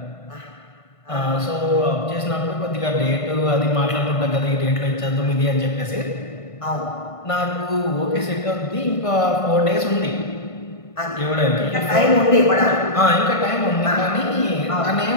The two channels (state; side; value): late; right; 1.5 ms